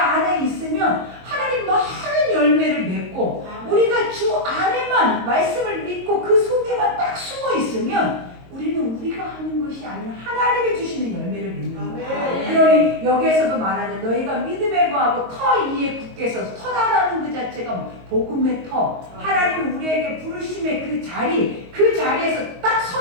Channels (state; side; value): late; left; 22 ms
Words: 있으면 하나님 많은 열매를 맺고, 우리가 주 안에만 말씀을 믿고 그 속에만 딱 숨어 있으면 우리는 우리가 하는 것이 아니라 하나님이 주시는 열매를 맺는 거예요. 그러니 여기에서도 말하죠. 너희가 믿음에 거하고 터 위에 굳게 서서, 터라는 그 자체가 복음의 터, 하나님이 우리에게 부르심의 그 자리에서 딱